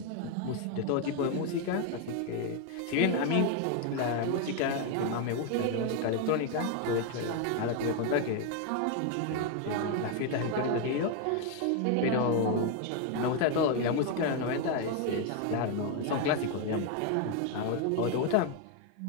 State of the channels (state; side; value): different; both; correlation 0.01